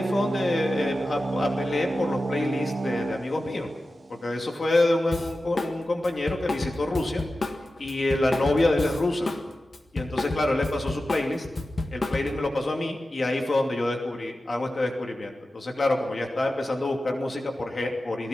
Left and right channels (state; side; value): normal; both; correlation 0.93